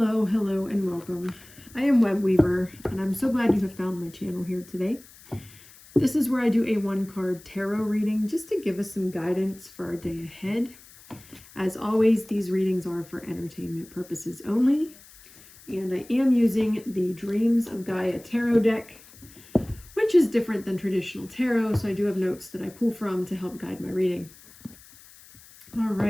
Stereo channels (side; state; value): left; noise; hiss, 22 dB below the sound